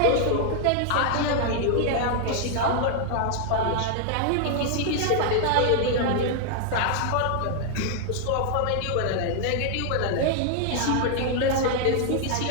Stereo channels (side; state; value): both; different; correlation 0.00